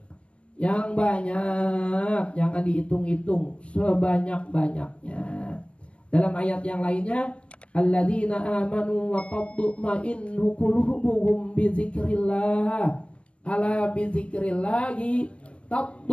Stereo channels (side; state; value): right; late; 0.060 ms